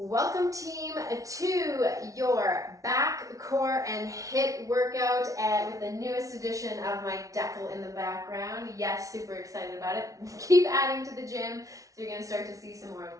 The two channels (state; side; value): late; left; 0.17 ms